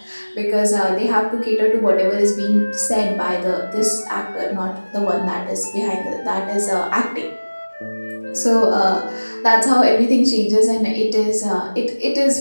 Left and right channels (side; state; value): both; inverted; correlation -1.00